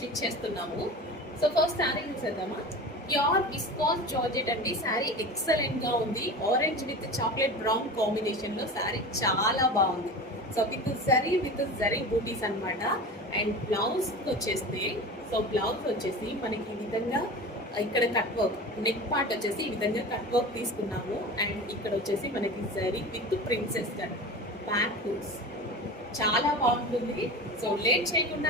చేస్తున్నాము. సో ఫస్ట్ శారీ చూసేద్దామా. ప్యూర్ విస్కాస్ జార్జెట్ అండి. శారీ ఎక్సలెంట్గా ఉంది. ఆరెంజ్ విత్ చాక్లెట్ బ్రౌన్ కాంబినేషన్లో శారీ చాలా బాగుంది. సో విత్ జరీ బూటీస్ అనమాట. అండ్ బ్లౌజ్ వచ్చేస్తే, సో బ్లౌజ్ వచ్చేసి మనకి ఈ విధంగా ఇక్కడ కట్ వర్క్, నెక్ పార్ట్ వచ్చేసి ఈ విధంగా కట్ వర్క్ తీసుకున్నాము. అండ్ ఇక్కడ వచ్చేసి మనకి zari with princess cut, back hooks, చాలా బాగుంటుంది. సో లేట్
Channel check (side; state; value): both; normal; correlation 0.32